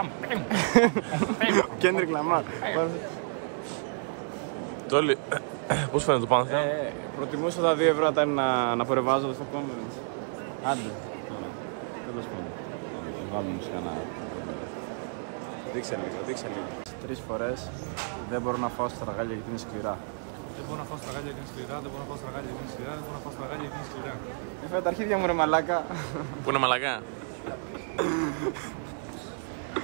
Kendrick Lamar. Τόλι, πώς φαίνεται το Pantheon? Προτιμούσα τα 2 ευρώ όταν να φορεβάζω στο conference. Άντε, τώρα. Τέλος πάντων. Θα βάλουμε σε ένα. Δείξε λίγο. 3 φορές δεν μπορώ να φάω στραγάλια γιατί είναι σκληρά. Δεν μπορώ να φάω στραγάλια γιατί είναι σκληρά, δεν μπορώ να φάω στραγάλια γιατί είναι σκληρά, δεν μπορώ να φάω στραγάλια γιατί είναι σκληρά. Έφερε τα αρχίδια μου ρε μαλάκα. Πού είναι μαλακά?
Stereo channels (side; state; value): left; silent; 58 dB below the other